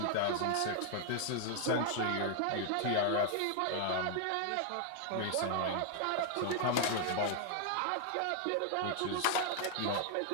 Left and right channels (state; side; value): different; both; correlation 0.00